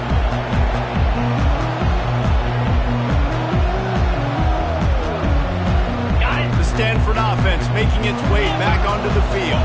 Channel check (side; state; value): both; identical; correlation 1.00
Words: The Stanford offense making its way back onto the field.